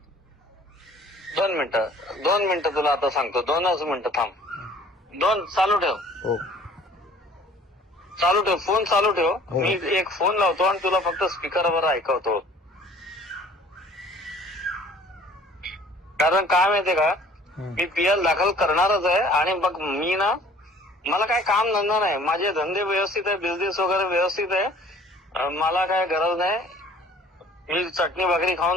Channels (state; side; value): normal; both; correlation 0.52